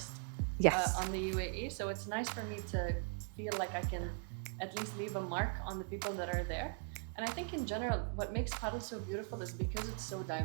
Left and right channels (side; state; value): left; quieter; 37.9 dB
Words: Yes. on the UAE. So it's nice for me to feel like I can at least leave a mark on the people that are there. And I think in general, what makes paddle so beautiful is because it's so